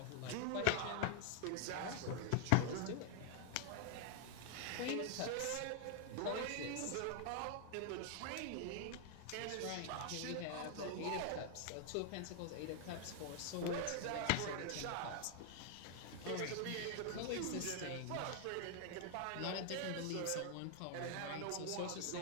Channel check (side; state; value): both; different; correlation 0.00